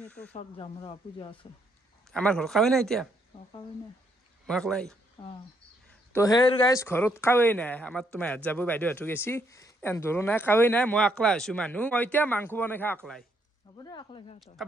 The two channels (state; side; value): normal; both; correlation 0.73